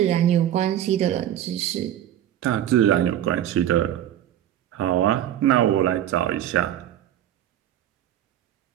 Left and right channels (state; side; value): quieter; left; 11.5 dB